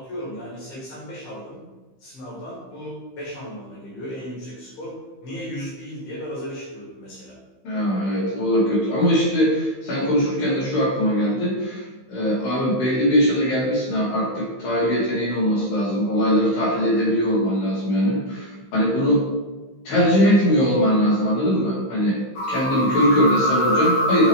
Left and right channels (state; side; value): late; right; 15 ms